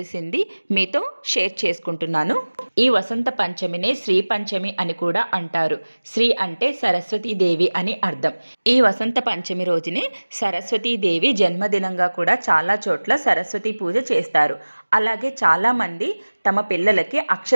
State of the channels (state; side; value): inverted; both; correlation -1.00